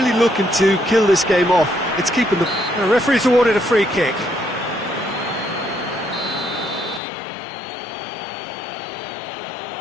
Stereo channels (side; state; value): right; drops out; at 7.0 s